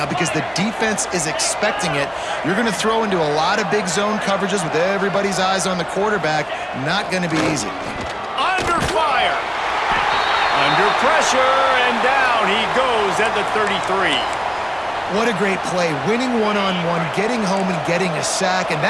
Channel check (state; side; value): identical; both; correlation 1.00